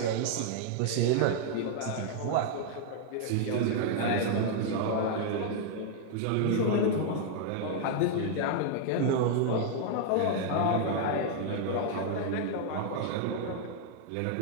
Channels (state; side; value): different; both; correlation -0.01